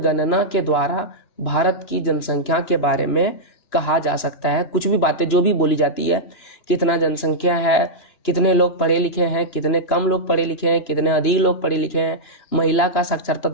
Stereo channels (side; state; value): right; late; 3.0 ms